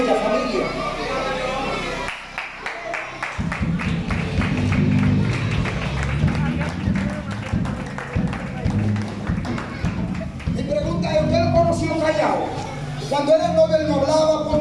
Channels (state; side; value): identical; both; correlation 1.00